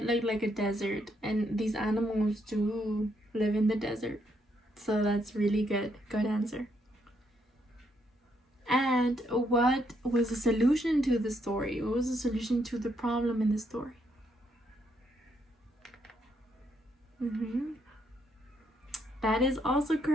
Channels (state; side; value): normal; both; correlation 0.75